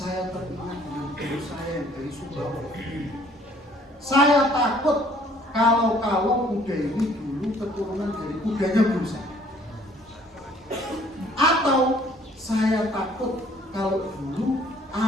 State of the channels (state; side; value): normal; both; correlation 0.58